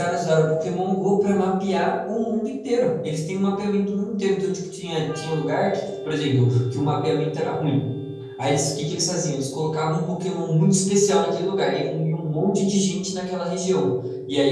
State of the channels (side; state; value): both; identical; correlation 1.00